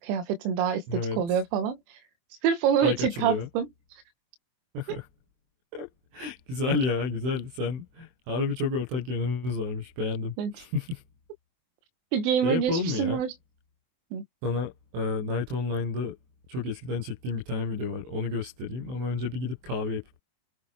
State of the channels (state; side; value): late; left; 23 ms